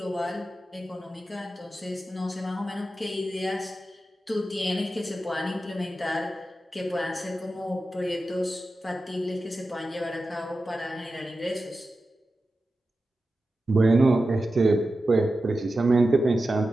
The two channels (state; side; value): normal; both; correlation 0.92